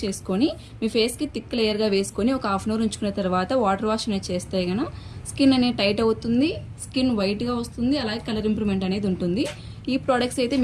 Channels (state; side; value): identical; both; correlation 1.00